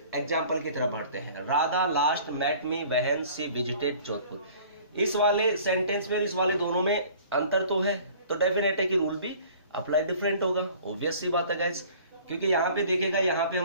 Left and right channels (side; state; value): both; inverted; correlation -0.50